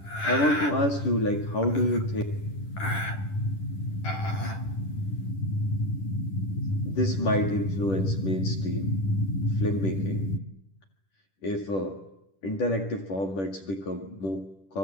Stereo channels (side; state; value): right; late; 10 ms